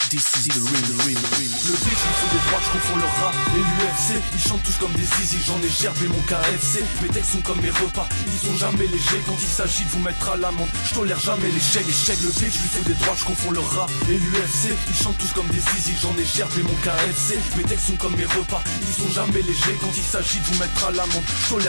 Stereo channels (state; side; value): inverted; both; correlation -1.00